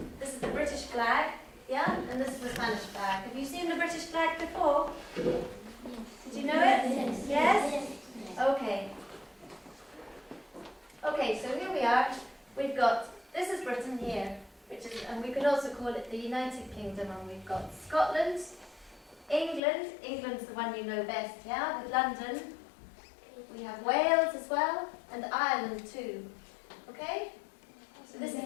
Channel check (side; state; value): right; drops out; at 19.6 s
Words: this is the British flag, yeah? And this is the Spanish flag. Have you seen the British flag before? Did you know it? Yes? Okay. Okay, so here we are. We've got, this is Britain here, which is, and we could also call it the United Kingdom, and we've got Scotland, England, England's the one you know best, yeah, with London. We have Wales as well, and Ireland too, okay? So this